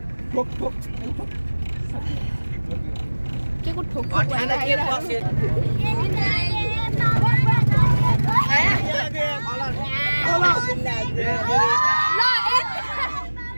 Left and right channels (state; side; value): inverted; both; correlation -1.00